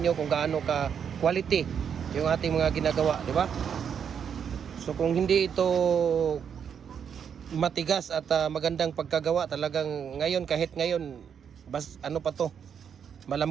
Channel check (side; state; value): left; quieter; 7.6 dB